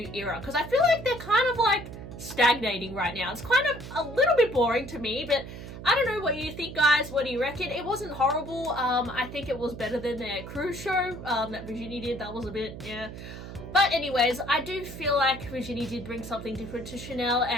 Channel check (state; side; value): noise; right; hum, 11 dB below the sound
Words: era, because I feel like they're kind of like stagnating right now. It's kind of a little bit boring to me, but I don't know what you think, guys. What do you reckon? It wasn't horrible. I think it was better than their cruise show that Virginie did. That was a bit, yeah. But anyways, I do feel like Virginie did bring something different to Chanel,